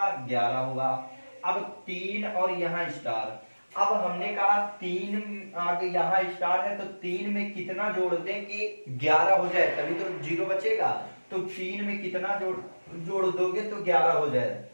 11 हुआ। अब 3 और यहाँ स्टार, अब हमने कहा 3 आगे यहाँ स्टार है तो 3 में कितना जोड़ दें कि 11 हो जाए, तभी तो 0 बचेगा। तो 3 में कितना जोड़ दोगे तो 11 हो जाए।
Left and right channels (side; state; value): both; inverted; correlation -1.00